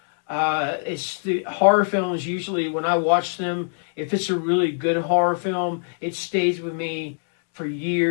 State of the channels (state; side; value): silent; right; digital silence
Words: It's the horror films usually when I watch them, if it's a really good horror film, it stays with me for